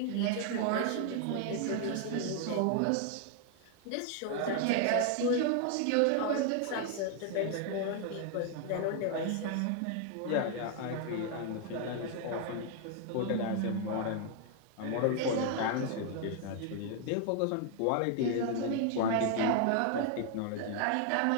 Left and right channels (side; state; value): both; different; correlation 0.00